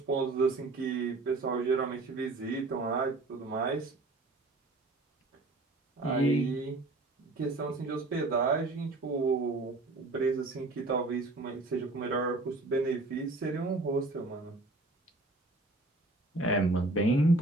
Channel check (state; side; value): quieter; left; 3.0 dB